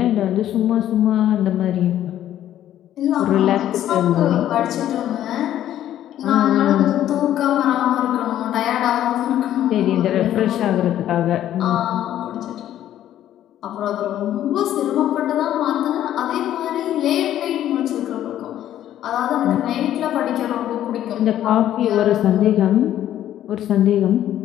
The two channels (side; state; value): right; quieter; 11.9 dB